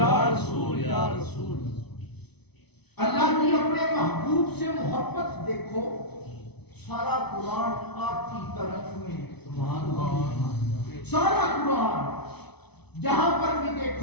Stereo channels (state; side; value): late; right; 0.99 ms